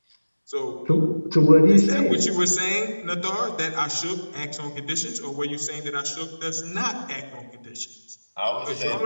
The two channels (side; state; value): both; inverted; correlation -1.00